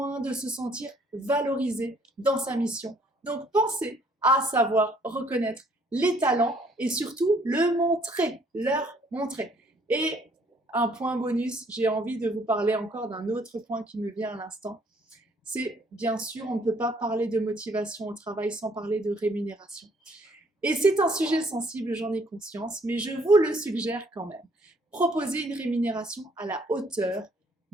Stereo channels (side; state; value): both; normal; correlation 0.63